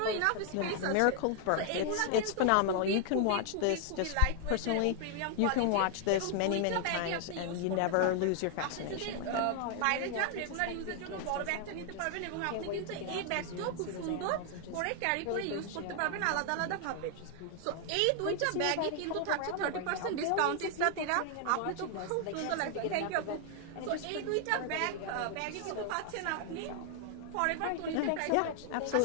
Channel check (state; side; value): different; both; correlation 0.00